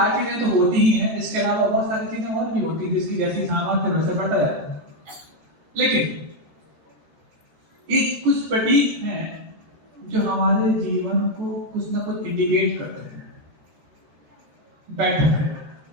चीजें तो होती ही हैं। इसके अलावा बहुत सारी चीजें और भी होती है जिसकी जैसी सामर्थ्य वैसे पड़ता है। लेकिन ये कुछ प्रतीक हैं जो हमारे जीवन को कुछ ना कुछ इंडिकेट करते हैं। बैठक है,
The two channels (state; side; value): late; left; 13 ms